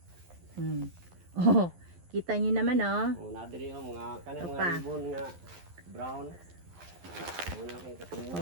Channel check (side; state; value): left; late; 11 ms